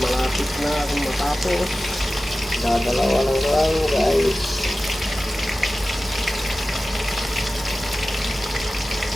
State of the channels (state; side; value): normal; both; correlation 0.95